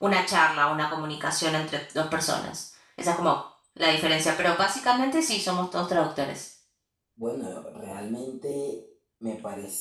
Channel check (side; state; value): both; identical; correlation 1.00